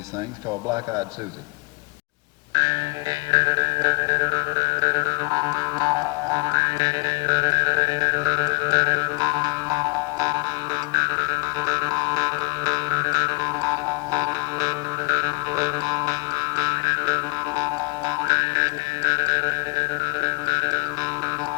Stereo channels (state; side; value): quieter; right; 23.0 dB